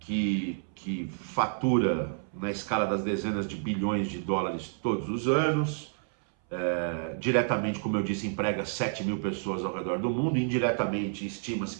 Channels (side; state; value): left; silent; 58 dB below the other